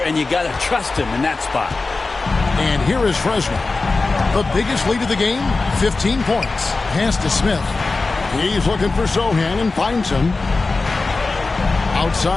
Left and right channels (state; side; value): quieter; right; 3.7 dB